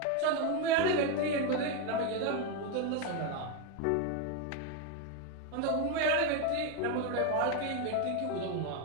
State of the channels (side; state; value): both; different; correlation 0.02